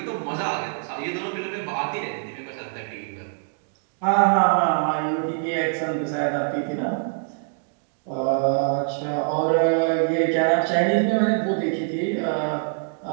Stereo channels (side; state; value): left; silent; digital silence